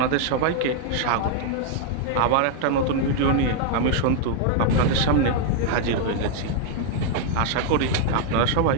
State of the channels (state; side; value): different; both; correlation 0.00